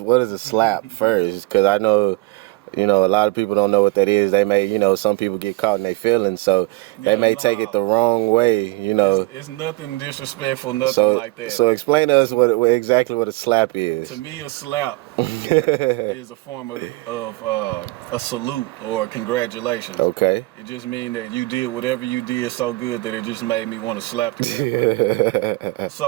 a slap first? Because I know, you know, a lot of people don't know what that is. They may, you know, some people get caught in their feelings, so they may take it the wrong way, you know. It's nothing disrespectful, nothing like that. So explain to us exactly what a slap is. To me, a slap is a form of a salute or a congratulations. Okay. It just means that you did whatever you did so good that it just made me want to slap you.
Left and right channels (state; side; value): quieter; left; 22.6 dB